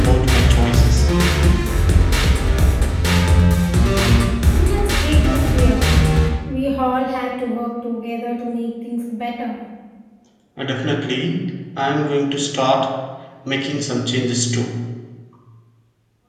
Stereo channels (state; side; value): identical; both; correlation 1.00